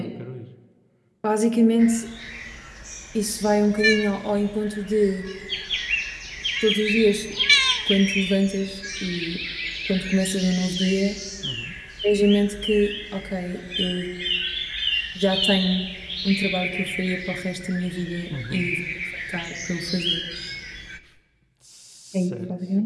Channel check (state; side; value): identical; both; correlation 1.00